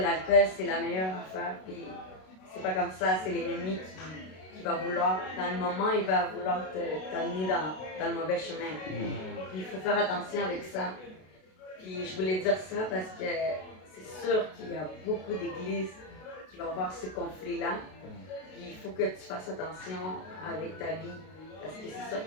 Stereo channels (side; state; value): right; late; 32 ms